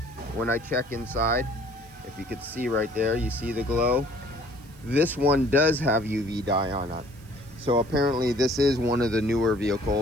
when I check inside, if you could see right there, you see the glow. This one does have UV dye on it. So apparently this is one of the newer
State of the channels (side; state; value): right; noise; hiss, 27 dB below the sound